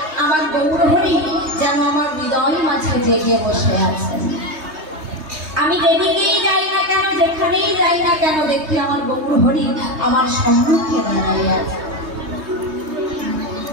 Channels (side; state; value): left; late; 3.2 ms